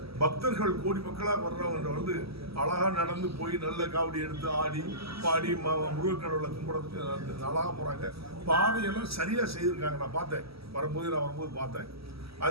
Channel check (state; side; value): late; left; 0.76 ms